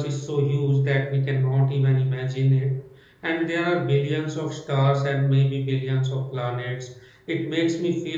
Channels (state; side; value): identical; both; correlation 1.00